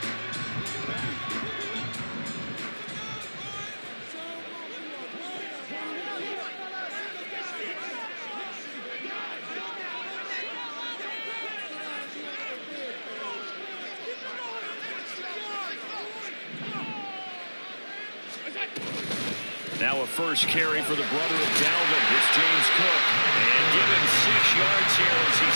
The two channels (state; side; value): inverted; both; correlation -1.00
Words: Now a first carry for the brother of Dalvin. It's James Cook. And give him 6 yards here as he